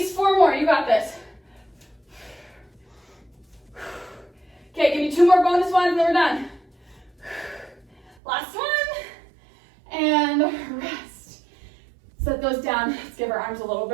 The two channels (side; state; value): left; drops out; at 8.2 s